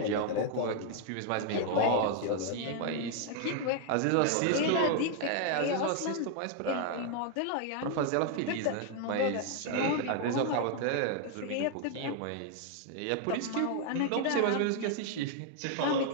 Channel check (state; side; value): different; both; correlation 0.00